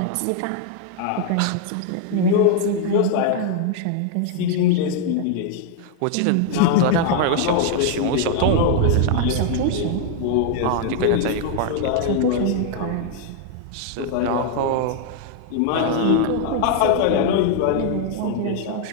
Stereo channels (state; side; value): different; both; correlation 0.00